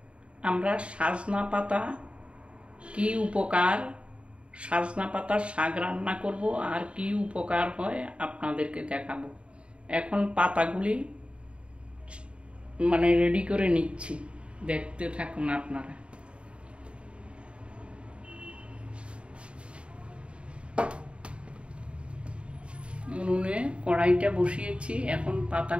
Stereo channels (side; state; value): left; late; 0.058 ms